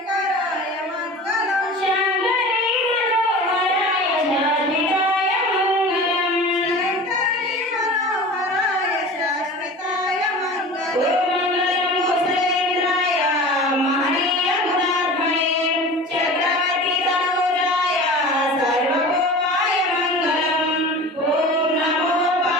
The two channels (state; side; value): normal; both; correlation 0.36